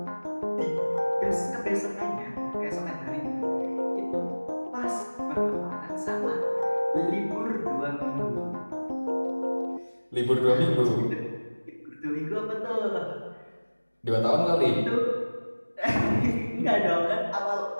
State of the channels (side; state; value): both; inverted; correlation -1.00